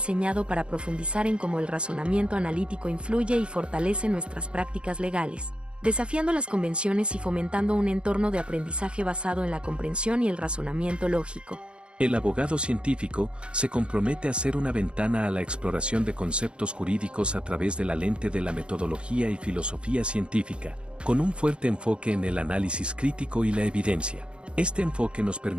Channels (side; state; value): left; late; 0.056 ms